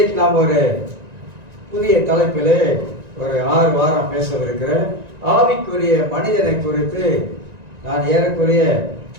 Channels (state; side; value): late; left; 1.9 ms